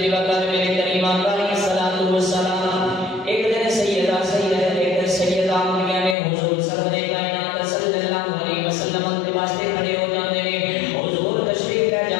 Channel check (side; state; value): right; drops out; at 6.2 s